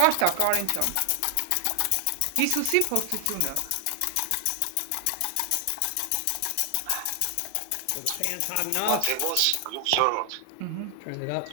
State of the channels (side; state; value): both; different; correlation 0.00